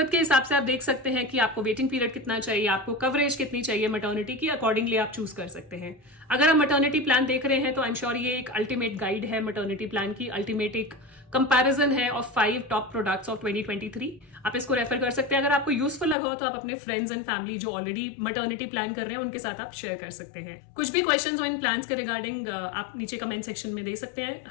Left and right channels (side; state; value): right; drops out; at 16.2 s